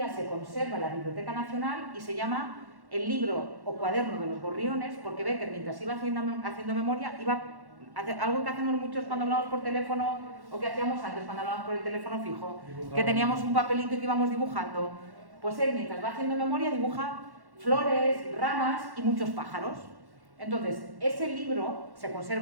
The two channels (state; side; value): late; left; 1.1 ms